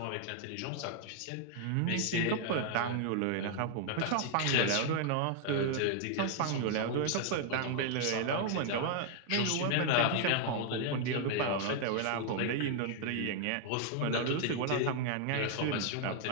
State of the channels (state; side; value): different; both; correlation 0.00